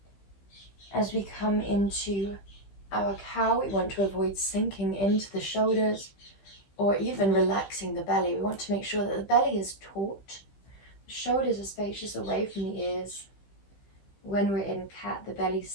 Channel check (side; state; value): right; late; 15 ms